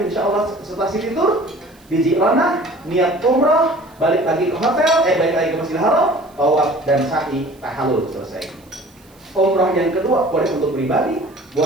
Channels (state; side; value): noise; right; hiss, 30 dB below the sound